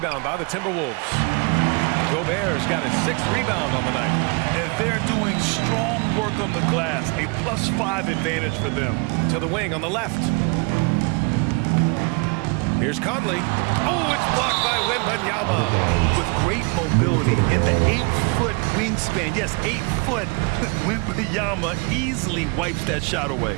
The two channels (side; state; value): left; quieter; 31.4 dB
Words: by the Timberwolves. Gobert's got his 6th rebound on the night. And they're doing strong work on the glass. A +5 advantage for them. To the wing on the left. Here's Conley. Oh, it's blocked by Wembanyama. With great mobility and the 8-foot wingspan. Yes, 8 foot. Wembanyama easily wipes that shot